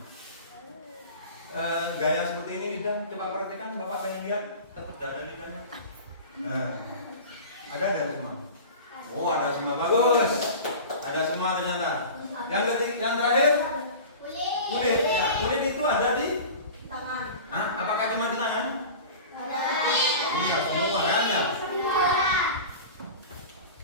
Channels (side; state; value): both; inverted; correlation -0.35